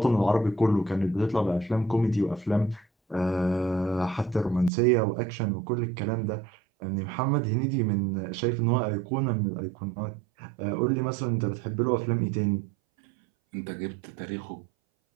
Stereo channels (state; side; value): drops out; left; at 4.7 s